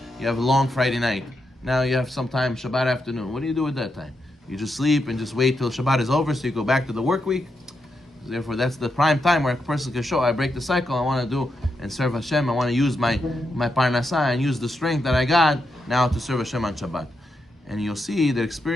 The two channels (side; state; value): both; normal; correlation 0.84